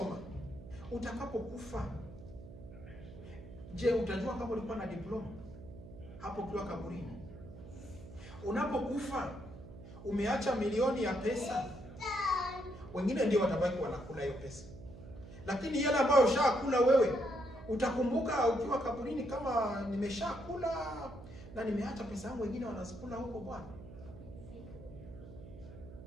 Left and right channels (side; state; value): right; noise; hum, 15 dB below the sound